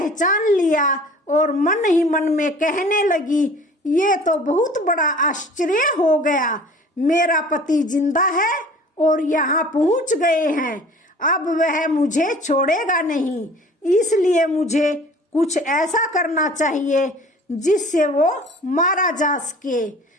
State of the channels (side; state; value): both; normal; correlation 0.47